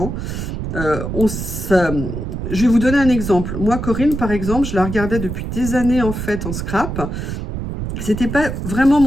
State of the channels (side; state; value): right; noise; rumble, 5 dB below the sound